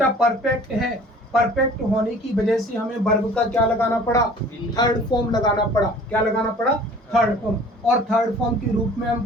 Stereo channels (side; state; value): both; normal; correlation 0.48